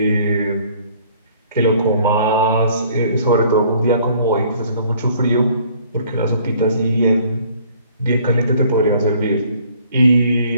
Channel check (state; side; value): inverted; both; correlation -0.57